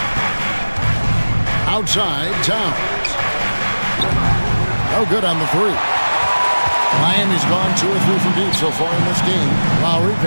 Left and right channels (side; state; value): both; inverted; correlation -1.00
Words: Outside, Towns. No good on the three. Miami's gone 2 or 3 from deep so far in this game. Lowry